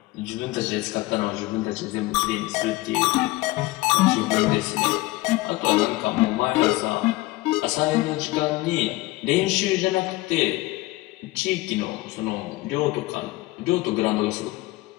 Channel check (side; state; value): right; quieter; 19.9 dB